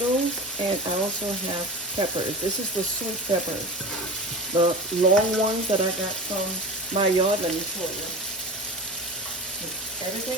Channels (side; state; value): both; normal; correlation 0.32